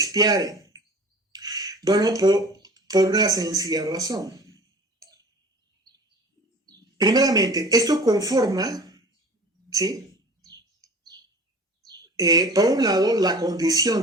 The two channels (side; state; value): both; normal; correlation 0.42